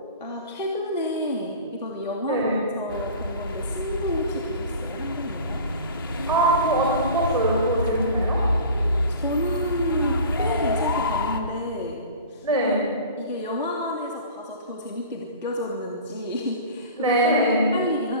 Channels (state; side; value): inverted; both; correlation -0.39